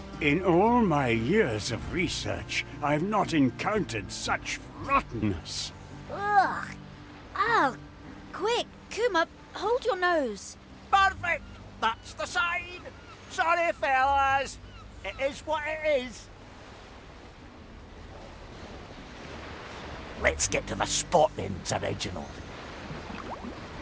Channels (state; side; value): identical; both; correlation 1.00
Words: In all my years of research, I've not encountered such rottenness. Ugh. Oh, quick, Kuma, hold your nose. Perfect. That's the sign. Sorry, fellas. It is what it is. Let's get to the spot then, Sir Reginald.